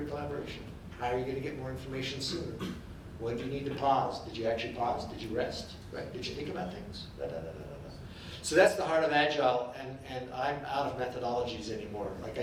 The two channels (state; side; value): identical; both; correlation 1.00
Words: collaboration? How are you going to get more information sooner? When do you need to pause? Did you actually pause? Did you rest? Right? Did you think about things? So that's the heart of Agile, and I'm out of methodologies anymore. Like